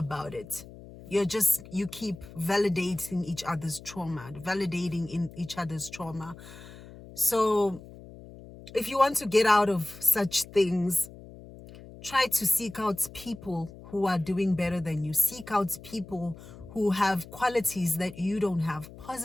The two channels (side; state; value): left; noise; hum, 17 dB below the sound